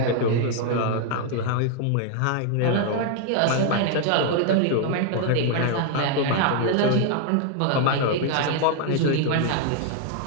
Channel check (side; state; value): both; different; correlation 0.00